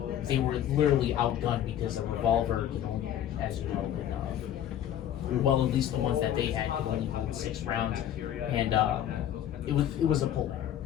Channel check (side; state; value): right; quieter; 10.8 dB